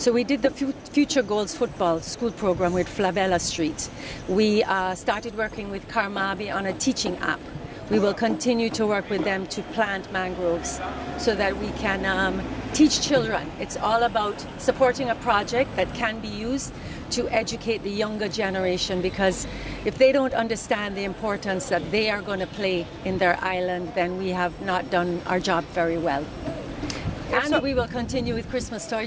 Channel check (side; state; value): both; identical; correlation 1.00